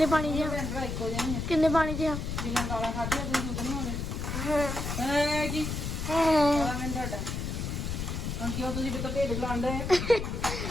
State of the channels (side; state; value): left; noise; rumble, 3 dB below the sound